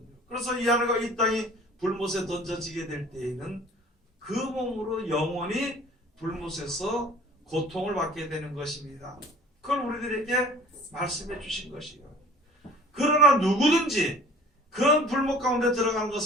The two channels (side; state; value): both; normal; correlation 0.48